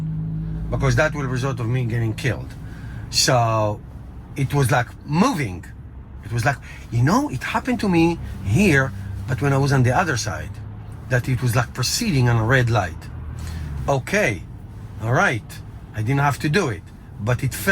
because that will result of me getting killed. So it was like moving. It was like, it happened to me here, but when I was on the other side, that it was like proceeding on a red light. Okay, all right, I didn't have to do it, but it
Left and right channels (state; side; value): identical; both; correlation 1.00